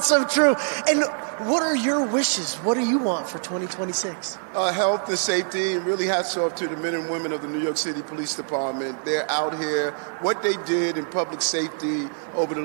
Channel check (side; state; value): left; silent; 58 dB below the other